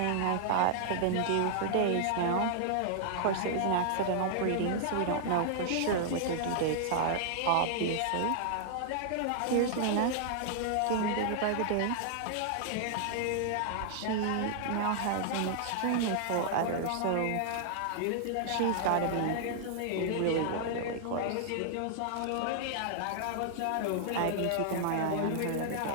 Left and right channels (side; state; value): both; different; correlation -0.01